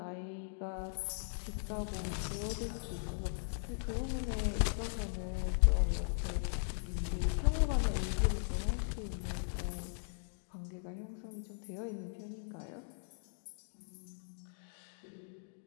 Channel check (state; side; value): silent; right; digital silence